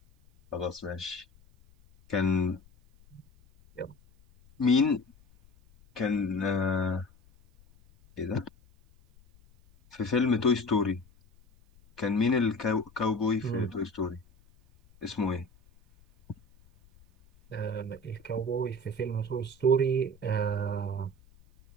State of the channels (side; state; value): left; noise; rumble, 28 dB below the sound